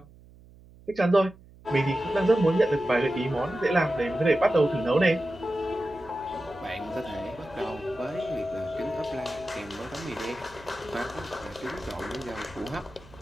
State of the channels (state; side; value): noise; right; hum, 23 dB below the sound